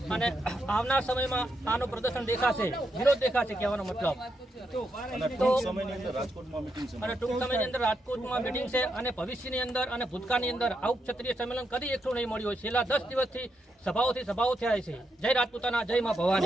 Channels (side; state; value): both; normal; correlation 0.82